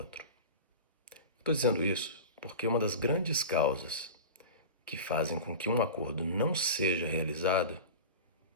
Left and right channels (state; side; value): inverted; both; correlation -0.31